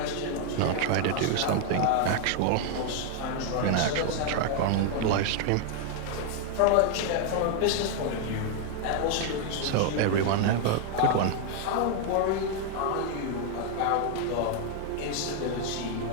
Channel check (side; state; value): both; different; correlation 0.00